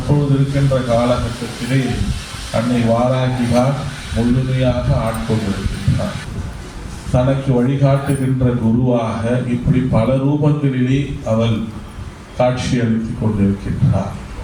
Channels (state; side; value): identical; both; correlation 1.00